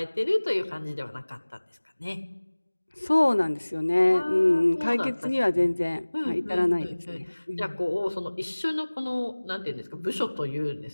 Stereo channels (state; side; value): inverted; both; correlation -1.00